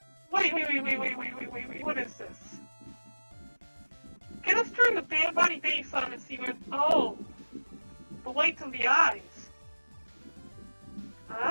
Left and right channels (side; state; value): both; inverted; correlation -1.00